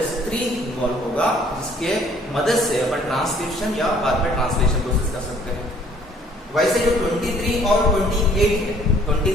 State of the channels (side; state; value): both; normal; correlation 0.58